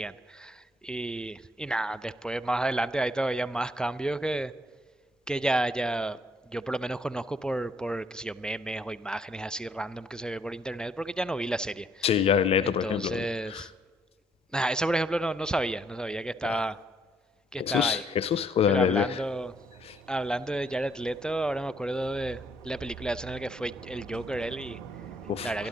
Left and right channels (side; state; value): both; normal; correlation 0.68